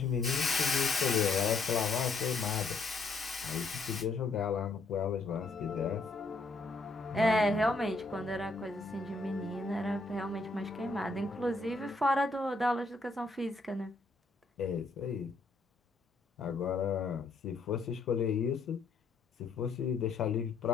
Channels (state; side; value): quieter; right; 3.5 dB